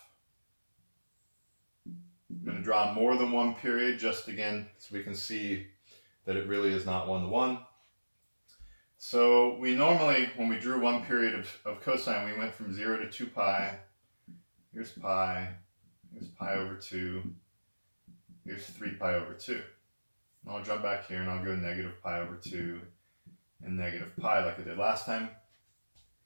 I'm going to draw more than one period just again so we can see that it really is not one-to-one. So we normally, when we drew one period of cosine, we went from 0 to 2 pi. Here's pi over 2. Here's 3 pi over 2. And I'll jump back here and I'll go negative pi over 2 and negative pi like I did last time.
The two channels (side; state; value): both; inverted; correlation -1.00